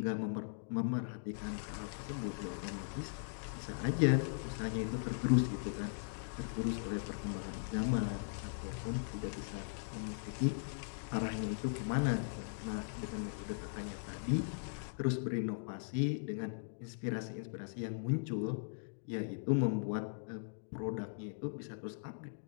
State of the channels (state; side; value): silent; right; digital silence